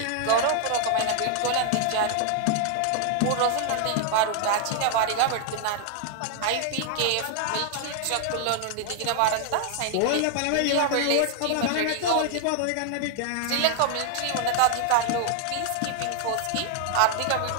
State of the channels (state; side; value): different; both; correlation 0.00